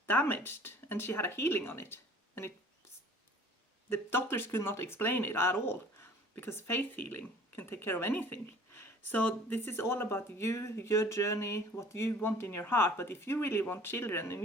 damaged, and she had a healing on it, and the doctors could not explain it at all, because faith healing can take care of anything. So this is all about you, your journey, what you want in your heart. But if you really want children, and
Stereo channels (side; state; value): both; normal; correlation 0.50